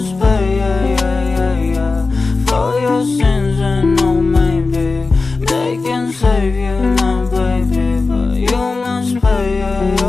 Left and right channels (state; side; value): quieter; right; 3.9 dB